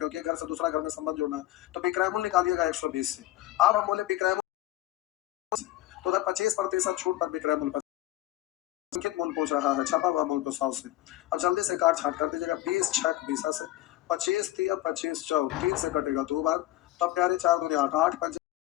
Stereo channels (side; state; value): right; quieter; 15.7 dB